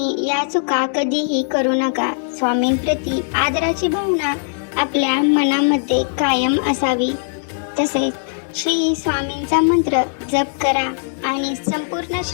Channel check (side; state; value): right; silent; 66 dB below the other